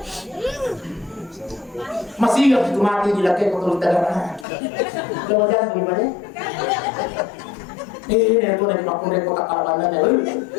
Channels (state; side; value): drops out; right; at 4.5 s